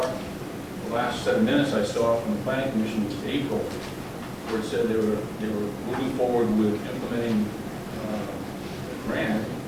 The last 7 minutes I saw from the Planning Commission was April, where it said they were moving forward with implementing the grant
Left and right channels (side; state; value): both; identical; correlation 1.00